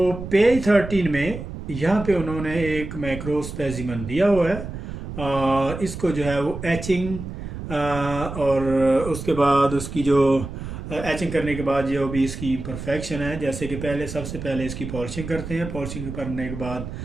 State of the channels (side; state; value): right; noise; rumble, 9 dB below the sound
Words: पेज 13 में यहाँ पे उन्होंने एक मैक्रो स्पेसिमन दिया हुआ है। इसको जो है वो एचिंग और उसके बाद उसकी जो एचिंग करने के बाद जो भी इसकी इम्परफेक्शन है, जैसे कि सबसे पहले इसकी पॉलिशिंग करते हैं। पॉलिशिंग